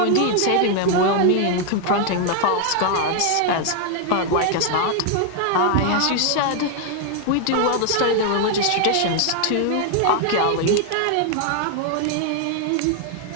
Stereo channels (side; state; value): both; different; correlation 0.00